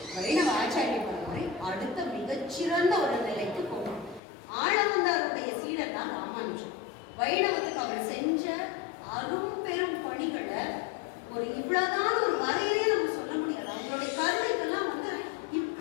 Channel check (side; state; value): right; drops out; at 4.2 s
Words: வைணவ ஆச்சாரிய பரம்பரை அடுத்த மிகச்சிறந்த ஒரு நிலைக்கு போகணும். ஆளவந்தாருடைய சீடர் தான் ராமானுஜன். வைணவத்துக்கு அவர் செஞ்ச அரும் பெரும் பணிகளை ஒரு இவ்வளவுதான் ஒரு வரையிலே நம்ம சொல்ல முடியாது. அவங்களுடைய கருணைக்கெல்லாம் வந்து